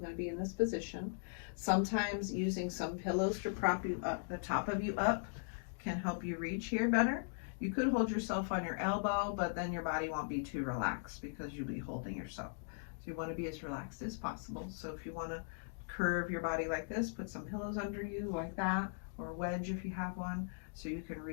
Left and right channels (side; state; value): right; silent; digital silence